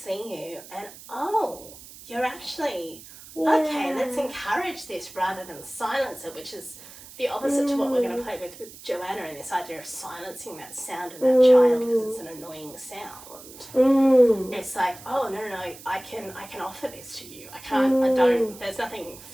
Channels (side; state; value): right; noise; hiss, 18 dB below the sound